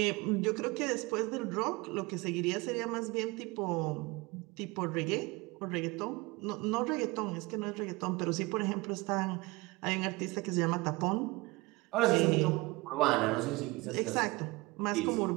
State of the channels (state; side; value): quieter; left; 23.4 dB